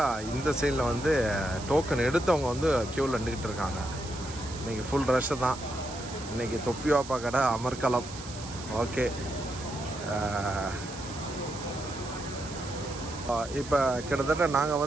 இந்த சைடில் வந்து டோக்கன் எடுத்தவங்க வந்து க்யூவில் நின்றுக்கிட்டு இருக்காங்க. இன்றைக்கி ஃபுல் ரஷ்ஷு தான். இன்றைக்கி தொப்பி வாப்பா கடை அமர்கலம். ஓகே, இப்போ கிட்டத்தட்ட நாங்கள்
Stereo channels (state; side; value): noise; right; hiss, 14 dB below the sound